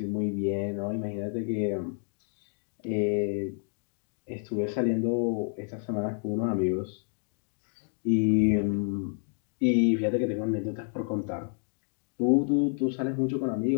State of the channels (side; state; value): right; silent; 58 dB below the other